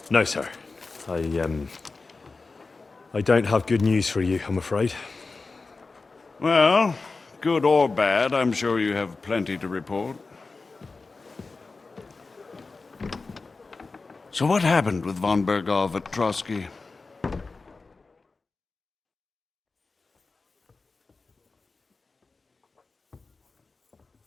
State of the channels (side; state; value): right; quieter; 3.9 dB